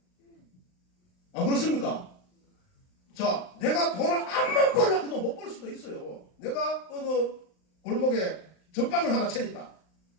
안 그렇습니까? 자, 내가 돈을 암만 벌려고 해도 못 벌 수도 있어요. 내가 어느 골목에 전빵을 하나 차렸다.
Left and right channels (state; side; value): late; right; 39 ms